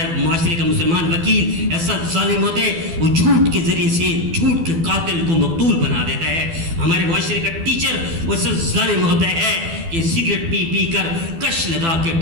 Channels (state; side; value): late; left; 12 ms